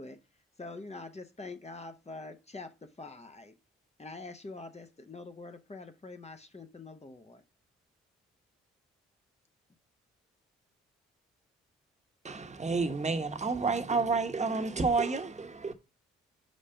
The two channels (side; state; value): left; quieter; 3.3 dB